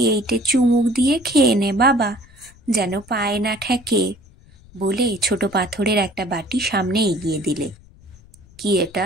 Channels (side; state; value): left; noise; rumble, 25 dB below the sound